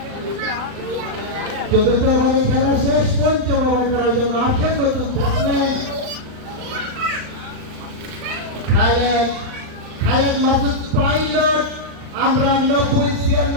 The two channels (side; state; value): left; late; 39 ms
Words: ওভারে খেলা শেষ। পঞ্চম ওভার করার জন্য আসছেন নতুন ব্যাটসম্যান খালেদ মাসুদ পাইলট। আমরা